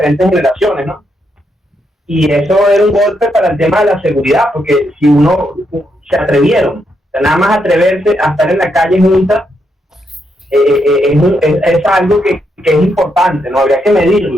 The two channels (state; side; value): normal; both; correlation 0.80